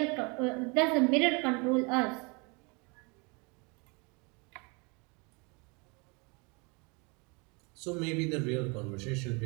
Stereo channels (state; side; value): quieter; left; 30.5 dB